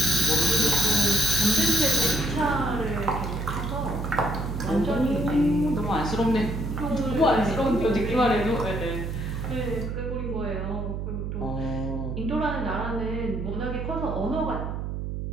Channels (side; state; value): right; noise; hum, 4 dB below the sound